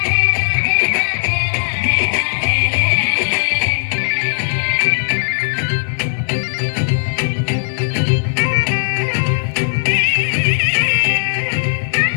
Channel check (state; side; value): silent; right; digital silence